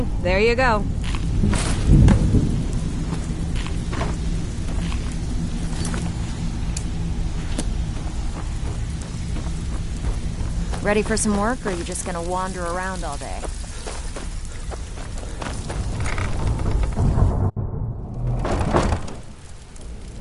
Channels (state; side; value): identical; both; correlation 1.00